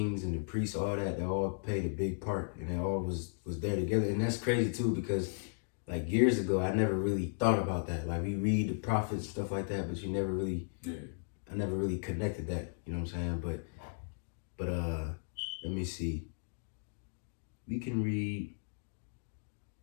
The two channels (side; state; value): right; silent; digital silence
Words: and the priests, all that, they all played a big part, and they all was there together. And that's crazy, too, because, like, years ago, I never really thought about that. Like, we read the prophets, stuff like that, but I never really connected that, you know what I'm saying? But let me see. We can read,